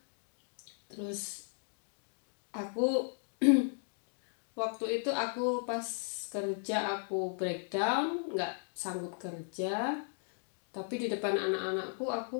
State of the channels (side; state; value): right; silent; 54 dB below the other